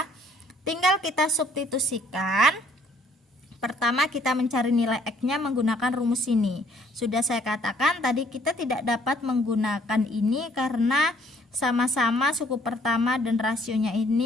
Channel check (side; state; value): both; normal; correlation 0.62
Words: Tinggal kita substitusikan. Pertama kita mencari nilai X-nya menggunakan rumus ini. Sudah saya katakan tadi kita tidak dapat menggunakan ini karena sama-sama suku pertama dan rasionya